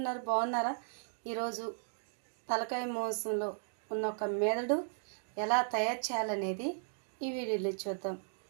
బాగున్నారా? ఈరోజు తలకాయ మాంసంలో ఉన్న ఒక మెదడు ఎలా తయారు చేయాలనేది ఈ వీడియోలో చూద్దాం.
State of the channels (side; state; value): left; silent; digital silence